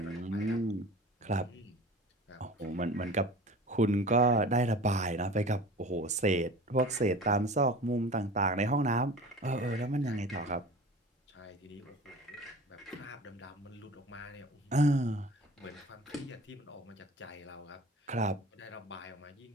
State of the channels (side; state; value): both; normal; correlation 0.39